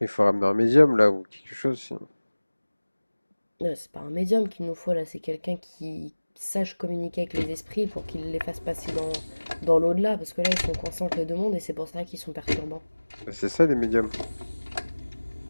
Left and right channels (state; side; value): inverted; both; correlation -1.00